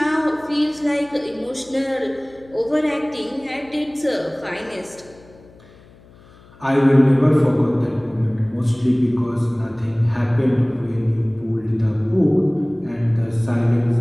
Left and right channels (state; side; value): noise; left; hum, 25 dB below the sound